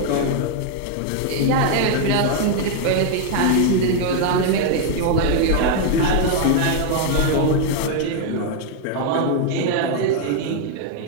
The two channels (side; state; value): both; different; correlation 0.00